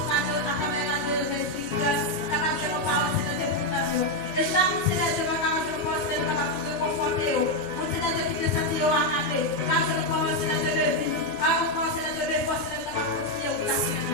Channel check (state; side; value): late; right; 10 ms